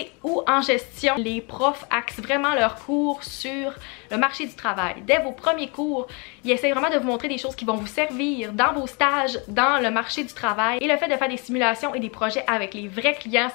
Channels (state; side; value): quieter; right; 32.1 dB